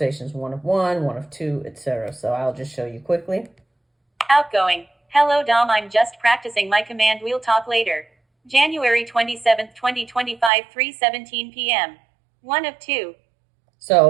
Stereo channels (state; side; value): drops out; left; at 10.5 s